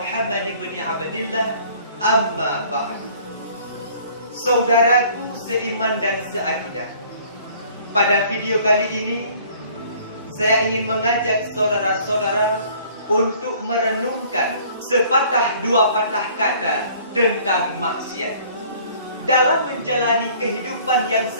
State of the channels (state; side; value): inverted; both; correlation -0.54